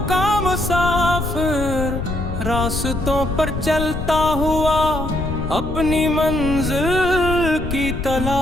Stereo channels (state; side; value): noise; left; rumble, 6 dB below the sound